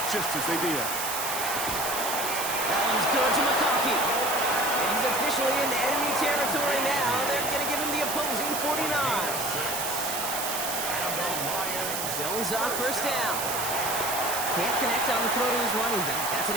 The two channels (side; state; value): right; noise; hiss, 3 dB below the sound